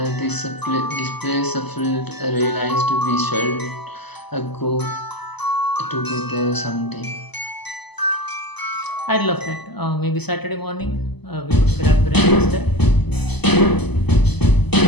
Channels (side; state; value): right; late; 0.99 ms